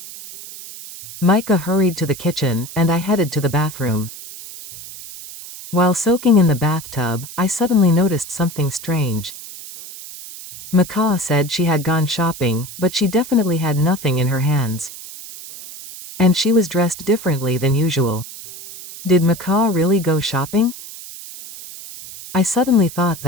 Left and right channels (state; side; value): noise; right; hiss, 14 dB below the sound